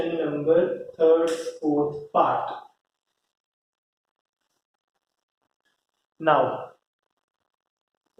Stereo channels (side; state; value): both; identical; correlation 1.00